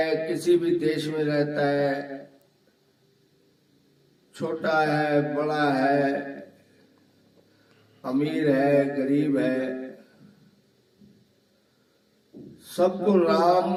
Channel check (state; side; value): identical; both; correlation 1.00